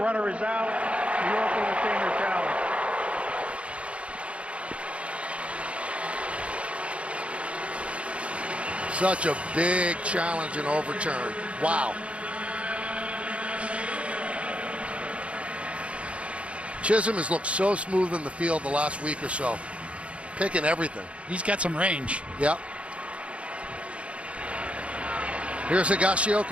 is out. New York will retain their challenge. Such a big challenge and overturn. Wow. Chisholm has looked so smooth in the field the last week or so. Picking everything. He's got some range. Yep. Here's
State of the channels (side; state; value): left; late; 0.061 ms